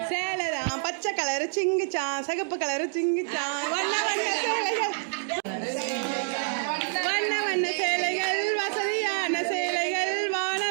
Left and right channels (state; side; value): silent; left; digital silence